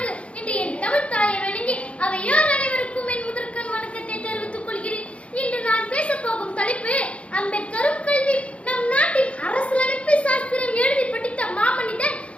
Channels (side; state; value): right; late; 0.062 ms